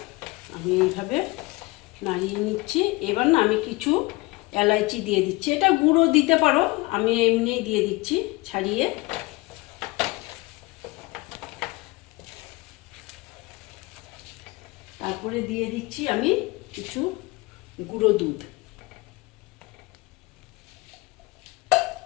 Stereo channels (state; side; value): quieter; right; 22.7 dB